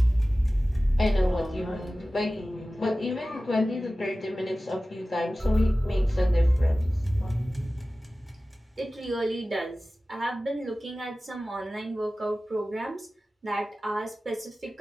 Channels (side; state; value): both; normal; correlation 0.96